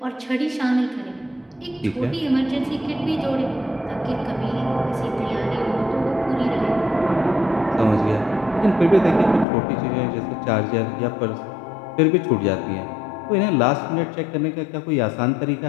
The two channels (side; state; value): right; drops out; at 9.5 s